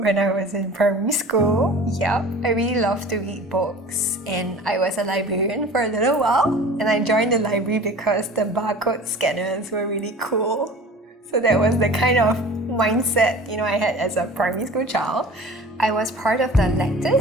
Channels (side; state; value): both; normal; correlation 0.41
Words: I was in primary school. Yeah, I really loved to read books, and I was a librarian for a little while, and I joined the library because the barcode scanners were really cool. So that was the kind of mindset, I had as a primary school child. I was part of the